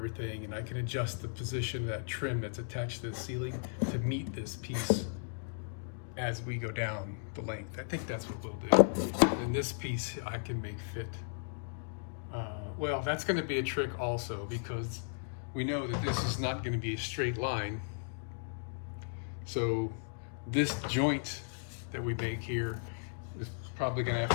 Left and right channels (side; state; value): right; silent; digital silence